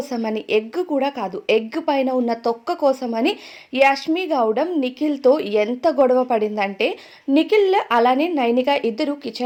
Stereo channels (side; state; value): both; identical; correlation 1.00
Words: ఎగ్ కూడా కాదు, ఎగ్ పైన ఉన్న తొక్క కోసమని యష్మి గౌడం నిఖిల్‌తో ఎంత గొడవ పడిందంటే, నిఖిల్ అలానే నైనిక ఇద్దరు